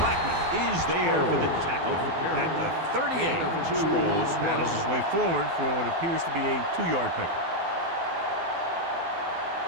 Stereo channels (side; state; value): left; late; 12 ms